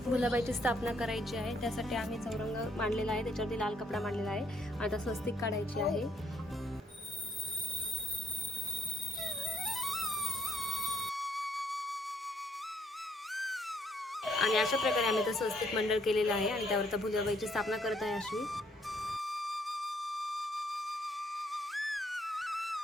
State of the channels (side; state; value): both; normal; correlation 0.69